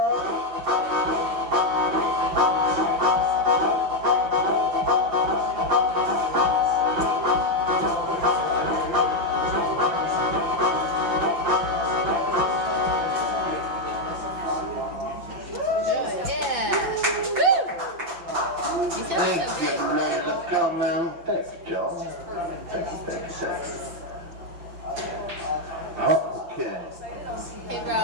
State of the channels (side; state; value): left; late; 5.8 ms